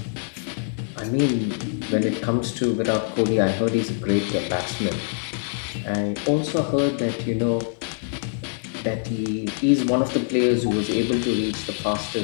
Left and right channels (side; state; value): right; silent; digital silence